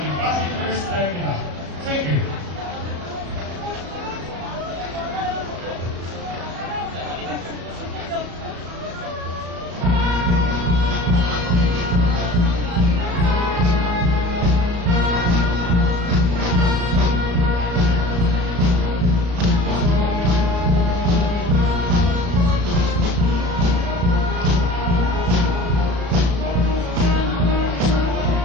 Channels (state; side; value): late; left; 34 ms